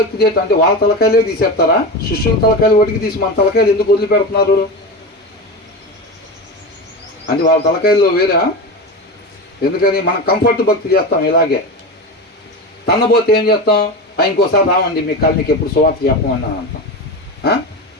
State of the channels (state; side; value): normal; both; correlation 0.23